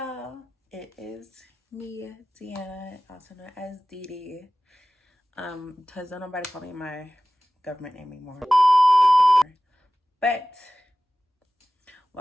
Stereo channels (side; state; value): both; normal; correlation 0.97